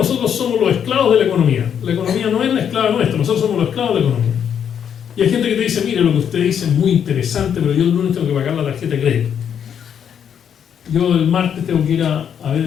somos los esclavos de la economía. La economía no es la esclava nuestra, nosotros somos los esclavos de la economía. Y hay gente que te dice, mire, lo que usted dice es muy interesante, pero yo el lunes tengo que pagar la tarjeta de crédito. Yo el martes tengo que ir a ver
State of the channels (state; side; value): quieter; right; 8.4 dB